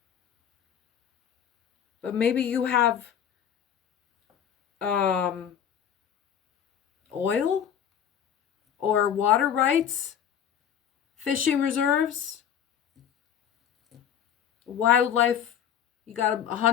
But maybe you have oil or water rights, fishing reserves, wildlife. You got a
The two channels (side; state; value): right; quieter; 9.0 dB